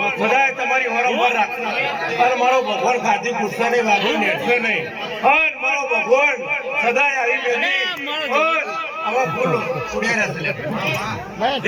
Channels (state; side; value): identical; both; correlation 1.00